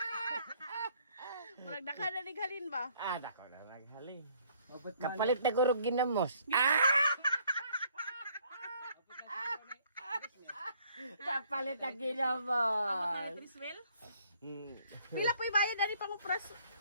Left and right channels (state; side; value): inverted; both; correlation -0.63